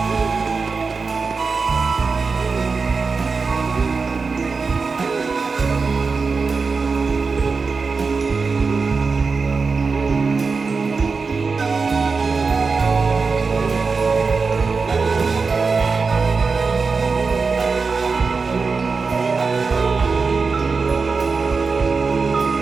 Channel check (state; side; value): quieter; left; 4.6 dB